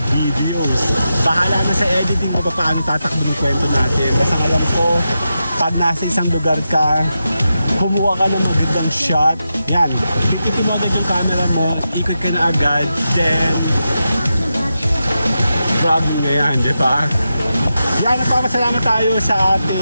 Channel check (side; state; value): both; inverted; correlation -0.89